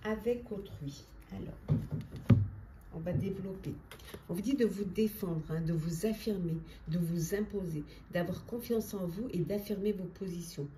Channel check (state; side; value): identical; both; correlation 1.00